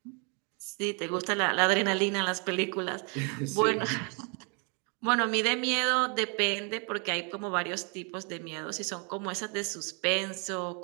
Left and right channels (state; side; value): quieter; left; 35.3 dB